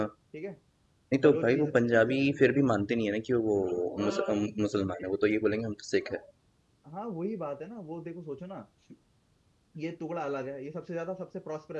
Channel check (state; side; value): identical; both; correlation 1.00